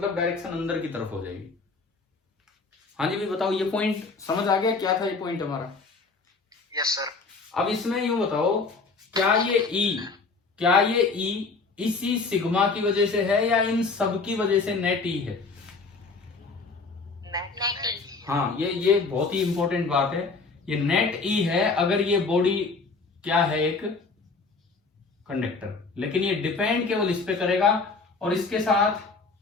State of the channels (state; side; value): quieter; right; 4.2 dB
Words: डायरेक्शन अंदर की तरफ हो जाएगी। हाँ जी, भी बताओ, ये पॉइंट समझ आ गया? क्या था ये पॉइंट हमारा? Yes sir. अब इसमें यूं बताओ, क्या ये ई इसी सिग्मा की वजह से है या इन सब की वजह से नेट ई है? हाँ, ये बहुत ही इंपॉर्टेंट बात है, ये नेट ई है अगर ये बॉडी क्या है, एक कंडक्टर। लेकिन ये डिपेंड केवल इस पे करेगा, और इसके साथ